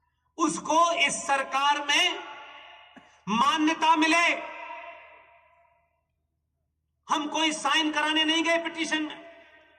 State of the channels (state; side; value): identical; both; correlation 1.00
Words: उसको इस सरकार में मान्यता मिले। हम कोई साइन कराने नहीं गए पिटीशन में,